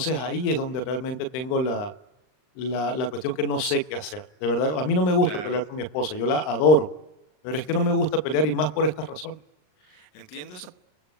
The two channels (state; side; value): late; right; 39 ms